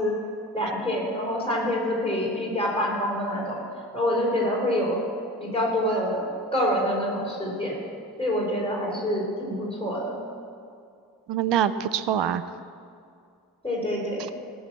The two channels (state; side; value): normal; both; correlation 0.33